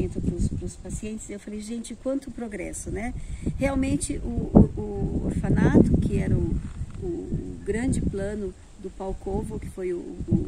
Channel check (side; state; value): both; identical; correlation 1.00